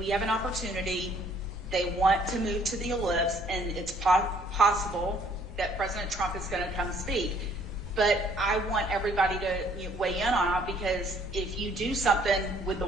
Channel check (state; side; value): normal; both; correlation 0.61